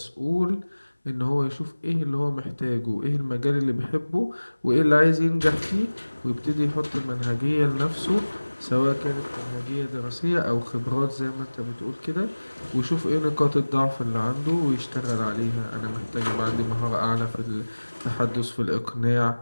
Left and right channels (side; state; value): both; inverted; correlation -1.00